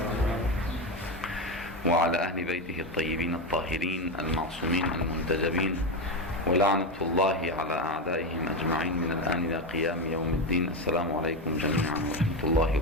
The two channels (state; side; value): normal; both; correlation 0.13